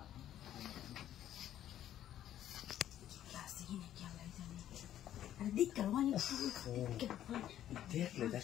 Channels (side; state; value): right; quieter; 11.6 dB